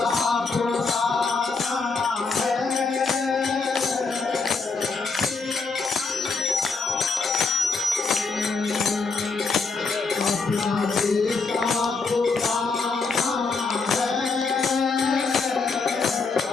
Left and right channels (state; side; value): quieter; right; 4.4 dB